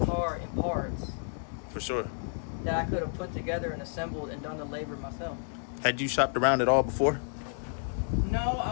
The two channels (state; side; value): silent; right; digital silence